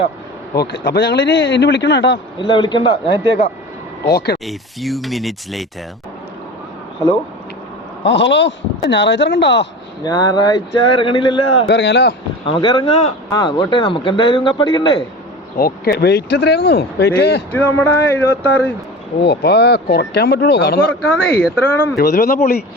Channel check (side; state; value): both; normal; correlation 0.33